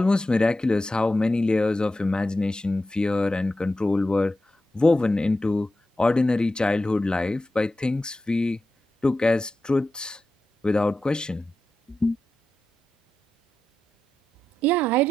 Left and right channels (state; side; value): normal; both; correlation 0.90